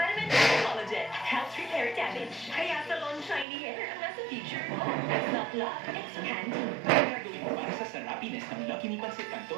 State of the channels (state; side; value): drops out; left; at 3.5 s